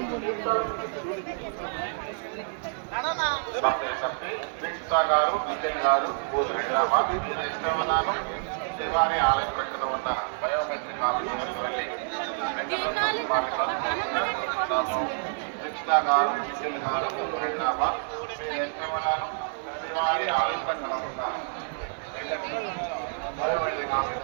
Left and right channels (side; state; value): left; silent; digital silence